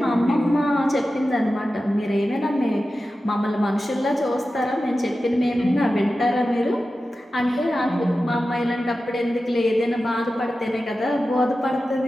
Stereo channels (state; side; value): normal; both; correlation 0.93